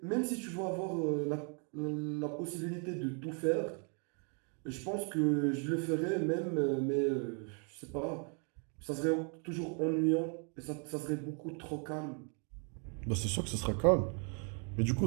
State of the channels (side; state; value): left; quieter; 39.7 dB